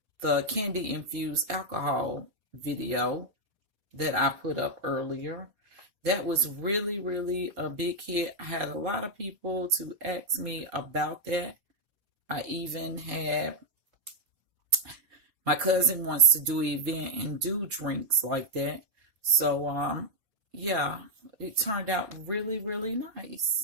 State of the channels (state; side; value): late; left; 4.2 ms